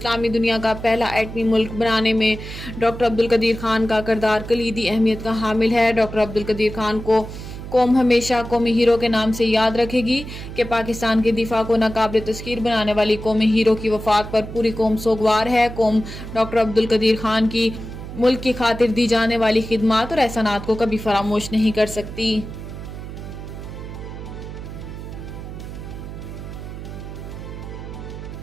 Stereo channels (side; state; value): right; noise; hum, 10 dB below the sound